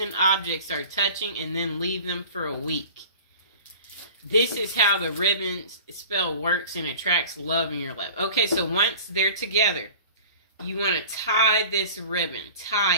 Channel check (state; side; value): inverted; both; correlation -0.41